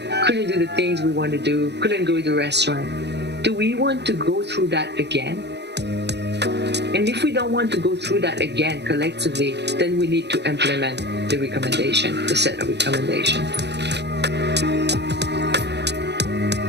couldn't do the things we want to do, couldn't go to the restaurant. Do we want to go through that again? And if we don't want to go through that again collectively, then we need to implement the recommendation, the set of recommendations.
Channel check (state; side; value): late; left; 0.50 ms